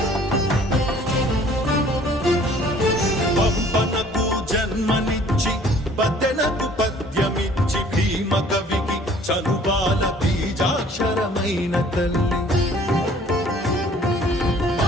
పంపనకు జన్మనిచ్చి పద్దెనకు పద్యమిచ్చి భీమ కవికి చనుబాల బీజాక్షరమైన తల్లి.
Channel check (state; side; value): normal; both; correlation 0.54